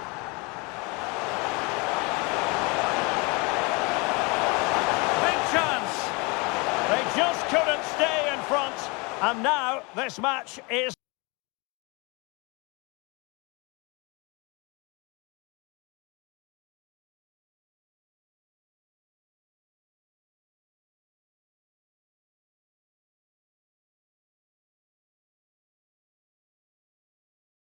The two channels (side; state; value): right; quieter; 28.6 dB